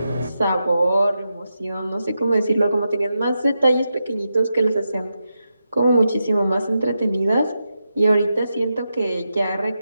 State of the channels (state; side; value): inverted; both; correlation -0.88